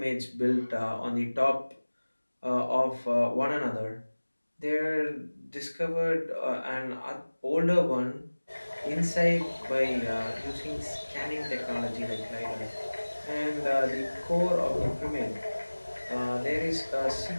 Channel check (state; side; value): inverted; both; correlation -1.00